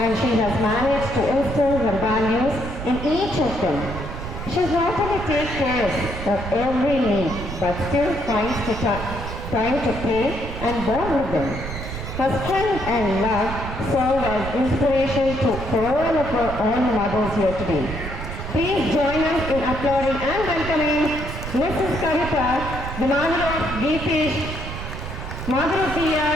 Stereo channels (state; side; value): noise; right; rumble, 7 dB below the sound